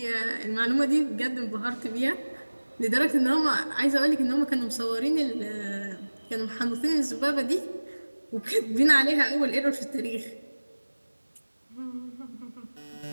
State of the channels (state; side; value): inverted; both; correlation -1.00